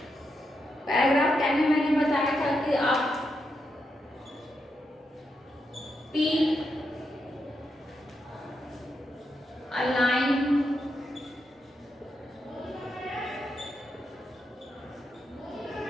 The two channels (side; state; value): both; normal; correlation 0.84